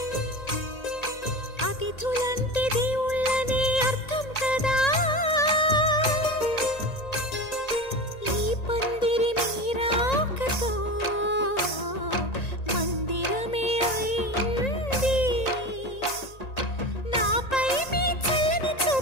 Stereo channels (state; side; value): late; right; 1.9 ms